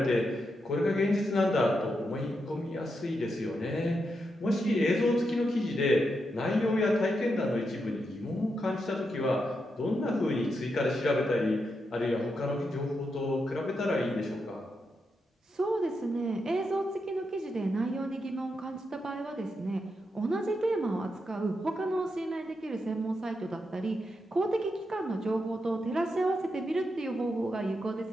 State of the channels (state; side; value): normal; both; correlation 0.84